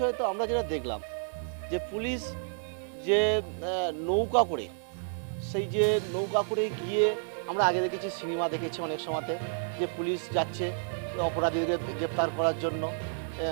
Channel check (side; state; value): left; silent; digital silence